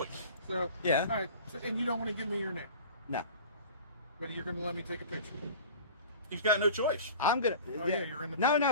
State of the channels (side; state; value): both; inverted; correlation -0.39